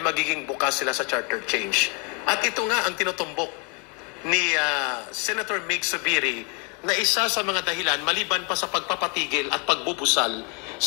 magiging bukas sila sa charter change. At ito nga ang tinutumbok ni Senator Mig Zubiri na isa sa mga dahilan maliban pa sa pagpapatigil at pagbubusal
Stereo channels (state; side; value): quieter; right; 31.8 dB